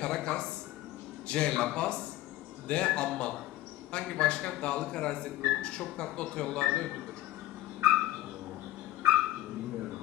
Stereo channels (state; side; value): quieter; right; 15.8 dB